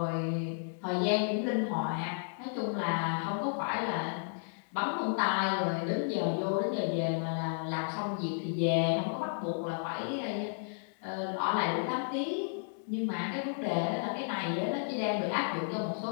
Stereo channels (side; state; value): right; silent; digital silence